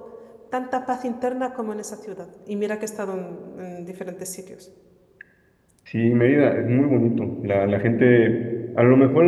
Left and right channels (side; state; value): both; identical; correlation 1.00